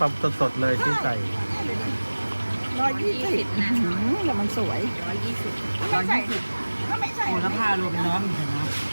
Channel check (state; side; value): inverted; both; correlation -1.00